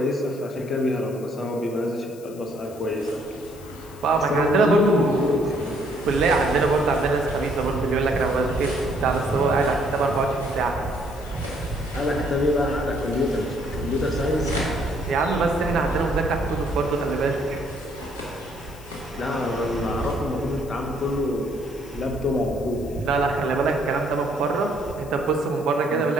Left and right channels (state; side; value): noise; left; hiss, 22 dB below the sound